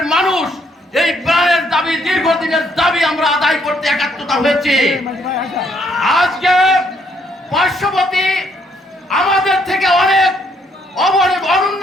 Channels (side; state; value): both; normal; correlation 0.70